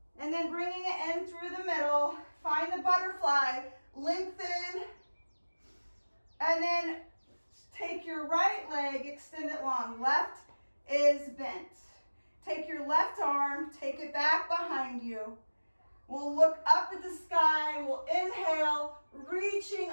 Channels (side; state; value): both; inverted; correlation -1.00